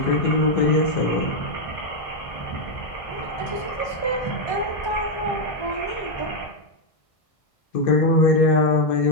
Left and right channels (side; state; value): right; late; 1.3 ms